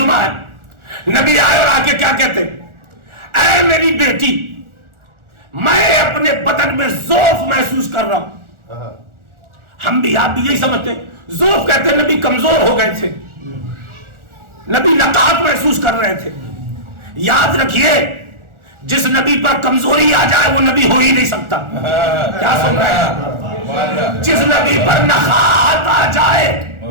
ہے, نبی آئے اور آ کے کیا کہتے, اے میری بیٹی میں اپنے بدن میں ضعف محسوس کر رہا ہوں. ہم بھی آپ بھی یہی سمجھتے ہیں, ضعف کہتے ہیں نبی کمزور ہو گئے تھے, نبی نقاہت محسوس کر رہے تھے. یاد رکھیے جس نبی پر کمزوری آ جائے وہ نبی ہو ہی نہیں سکتا. کیا سن رہے ہیں؟ جس نبی پر نقاہت آ جائے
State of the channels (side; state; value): left; late; 1.4 ms